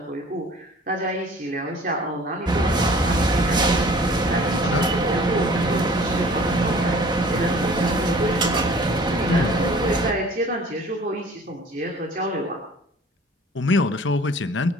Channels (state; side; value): normal; both; correlation 0.49